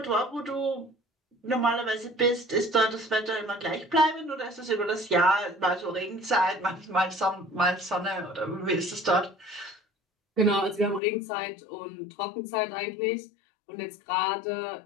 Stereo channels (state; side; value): drops out; right; at 11.0 s